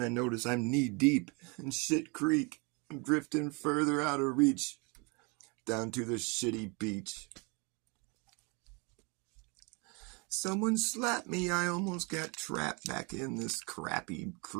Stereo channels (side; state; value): left; quieter; 30.8 dB